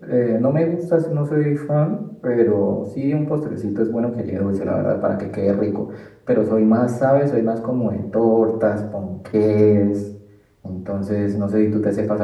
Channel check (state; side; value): identical; both; correlation 1.00